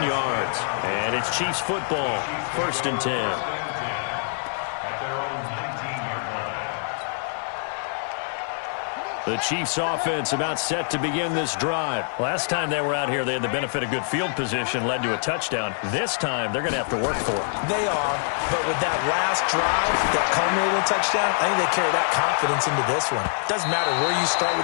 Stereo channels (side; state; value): right; silent; digital silence